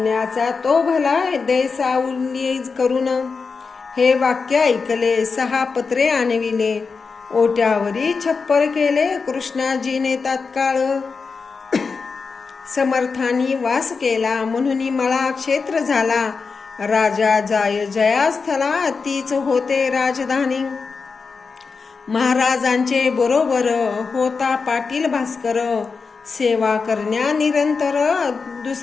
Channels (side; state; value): right; quieter; 4.8 dB